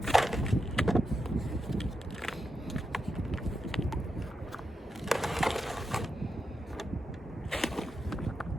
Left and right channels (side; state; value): both; normal; correlation 0.87